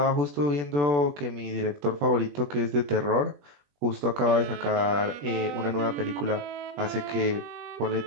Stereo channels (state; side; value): late; left; 21 ms